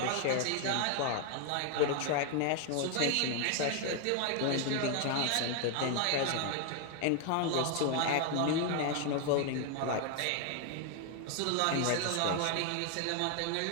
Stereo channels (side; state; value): both; different; correlation 0.00